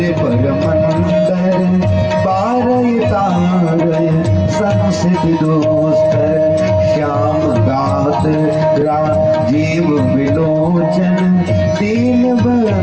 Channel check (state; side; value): identical; both; correlation 1.00